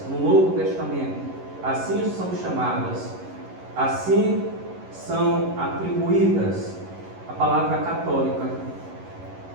no Novo Testamento, assim são chamadas, assim são atribuídas a palavra católica.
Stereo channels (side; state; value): left; late; 11 ms